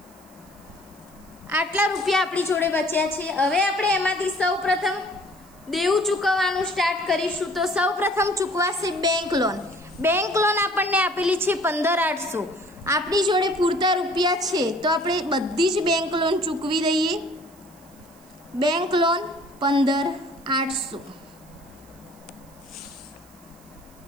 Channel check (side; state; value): right; noise; hiss, 28 dB below the sound